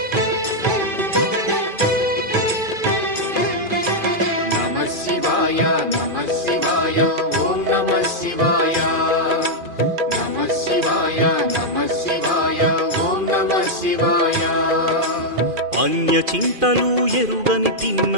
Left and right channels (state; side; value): late; left; 2.5 ms